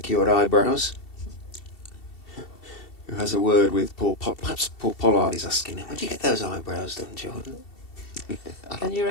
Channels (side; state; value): right; late; 2.7 ms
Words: eyebrows, who has a word with perhaps Paul Pollard is asking him, where'd you get those eyebrows done, Jordan? Can you